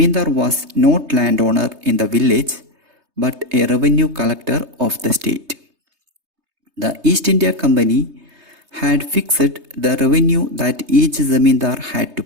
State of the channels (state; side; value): late; left; 3.3 ms